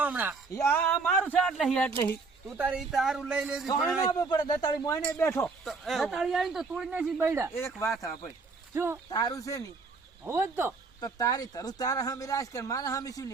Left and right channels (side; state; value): left; quieter; 4.2 dB